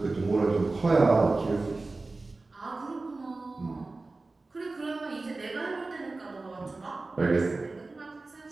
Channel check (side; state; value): left; quieter; 3.4 dB